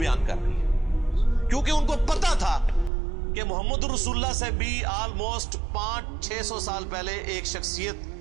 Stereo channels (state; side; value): drops out; left; at 2.9 s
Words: کر رہی ہے، کیونکہ ان کو پتا تھا کہ محمد رسول اللہ سے بھی آلموسٹ 500-600 سال پہلے ایک شخصیت